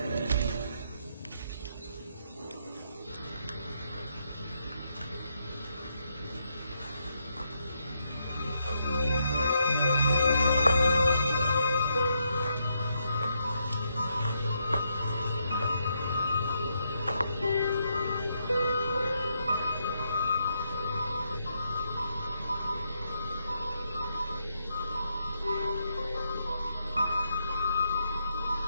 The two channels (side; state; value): both; inverted; correlation -0.78